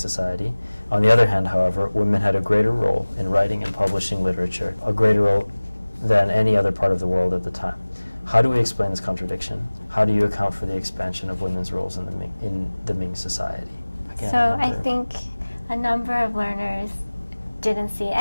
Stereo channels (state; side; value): inverted; both; correlation -1.00